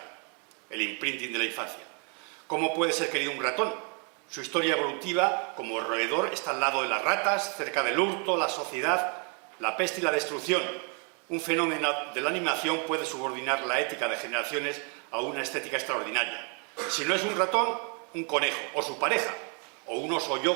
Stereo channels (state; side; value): quieter; left; 37.9 dB